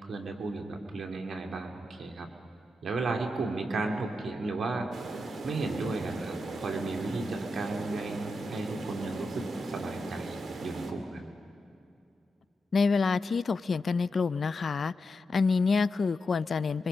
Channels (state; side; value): normal; both; correlation 0.87